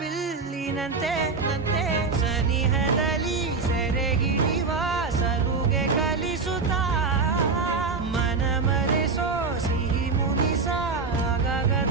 ಸನಿಹದಲ್ಲಿ ಸೆರೆ ಹಿಡಿಯುವ ಸಲುಗೆ ಕಲಿಸುತ್ತಾ, ಮನ ಮರೆಸೋ ಸಿಹಿ ಮುನಿಸ ಆಗಾಗ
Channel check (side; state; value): left; quieter; 4.4 dB